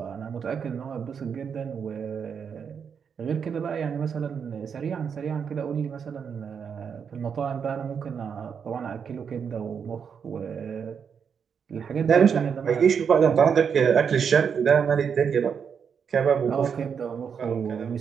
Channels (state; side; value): quieter; left; 6.9 dB